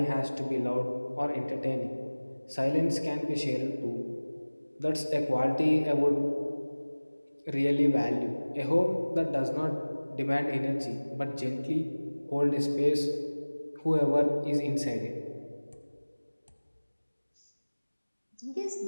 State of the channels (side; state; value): both; inverted; correlation -1.00